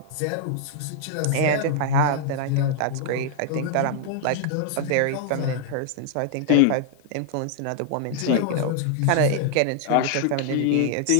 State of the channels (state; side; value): different; both; correlation 0.00